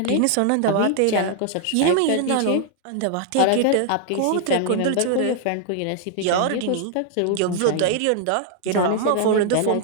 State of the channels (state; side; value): different; both; correlation 0.00